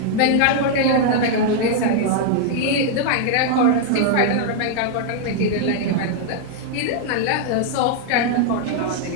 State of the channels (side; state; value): both; different; correlation 0.00